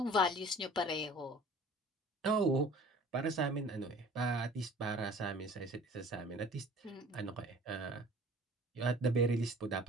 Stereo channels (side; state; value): both; normal; correlation 0.47